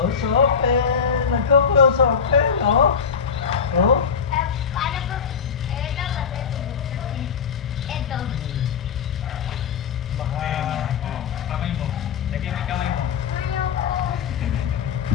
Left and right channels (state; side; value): quieter; right; 6.6 dB